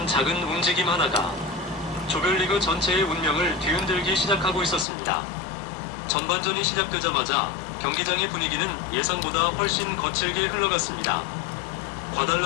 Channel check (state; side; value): drops out; right; at 4.9 s